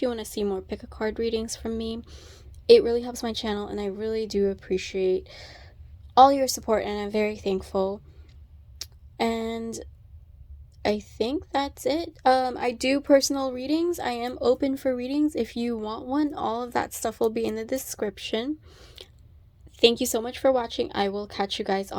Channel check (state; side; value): identical; both; correlation 1.00